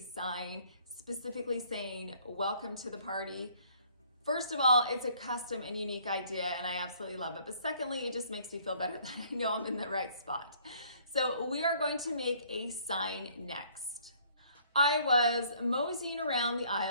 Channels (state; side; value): inverted; both; correlation -0.60